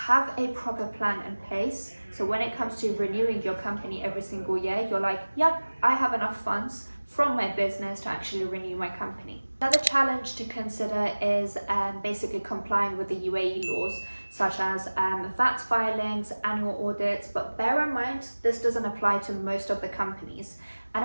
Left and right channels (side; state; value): both; inverted; correlation -1.00